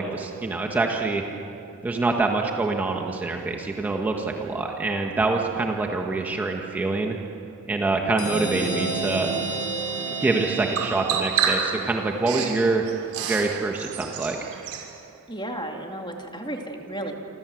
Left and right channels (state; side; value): quieter; left; 3.3 dB